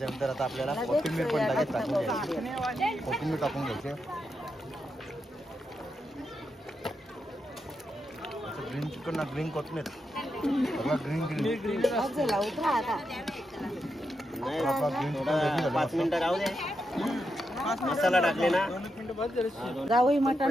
आता आपल्याला कोथिंबीर पण लगेच टाकून घ्यायची. कोथिंबीर टाकून घ्यायची. ग्रीन चिकन ना ग्रीन कोथिंबीर. ग्रीन ग्रीन झाला उतरा आता. ग्रीन चिकन 5 मिनिटं राहू दे. मसाला टाकले ना. गावई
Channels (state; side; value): normal; both; correlation 0.85